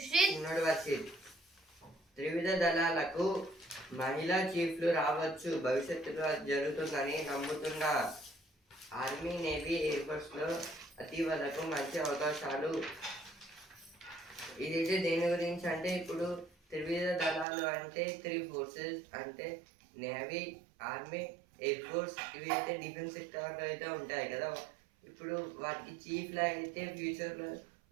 త్రివిధ దళాలకు మహిళా చీఫ్లు రావచ్చు, భవిష్యత్తులో జరుగుతుందని నమ్ముతున్న ఆర్మీ, నేవీ, ఎయిర్ ఫోర్స్ లో అతివలకు మంచి అవకాశాలు. ఇదైతే దేని గురించి అంటే, ఇప్పుడు త్రివిధ దళాలు అంటే 3 ఫోర్సెస్ అంటే నేవీ, ఆర్మీ, ఎయిర్ ఫోర్స్. ఇవి అయితే డిఫెన్స్ సెక్టార్లో అయితే ఉంటాయి కదా. ఇప్పుడు వాటికి చీఫ్లా అయితే ఫ్యూచర్లో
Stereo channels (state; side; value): drops out; left; at 17.4 s